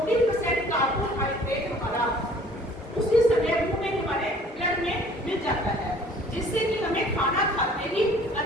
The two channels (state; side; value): normal; both; correlation 0.53